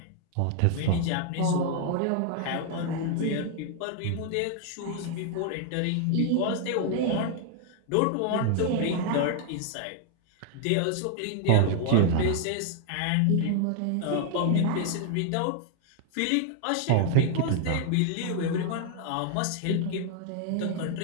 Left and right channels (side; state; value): both; different; correlation 0.00